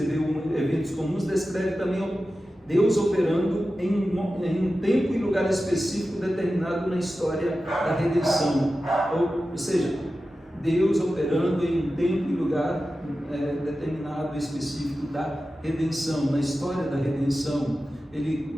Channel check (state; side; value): normal; both; correlation 0.93